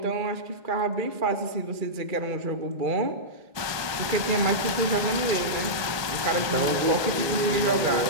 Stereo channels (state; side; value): late; left; 1.2 ms